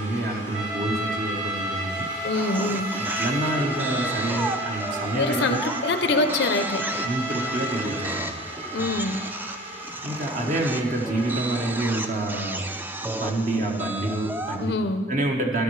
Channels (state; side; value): normal; both; correlation 0.43